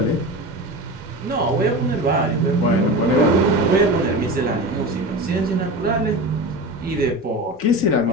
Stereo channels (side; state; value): both; normal; correlation 0.28